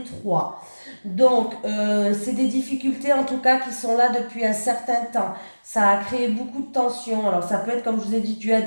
trois. Donc, c'est des difficultés en tout cas qui sont là depuis un certain temps. Ça a créé beaucoup de tensions. Alors, ça peut être, comme je vous ai dit, dû à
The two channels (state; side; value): inverted; both; correlation -1.00